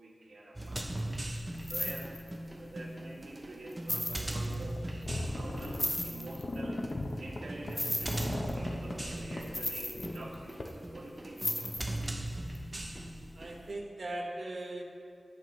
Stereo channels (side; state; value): both; normal; correlation 0.97